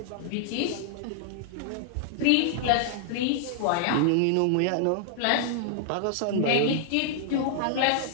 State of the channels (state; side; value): different; both; correlation 0.00